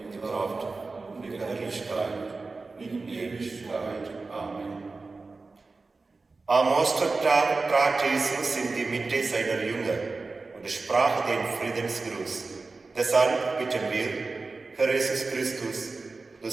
Kraft und die Herrlichkeit in Ewigkeit. Amen. Am Ostertag trat Jesus in die Mitte seiner Jünger und sprach den Friedensgruß. Deshalb bitten wir, Herr Jesus Christus, du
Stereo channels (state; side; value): quieter; left; 3.8 dB